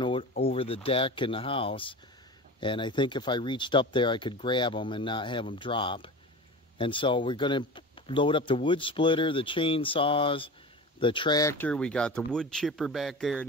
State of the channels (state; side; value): normal; both; correlation 0.32